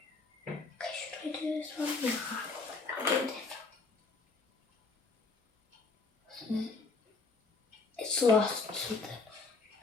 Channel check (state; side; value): quieter; right; 4.1 dB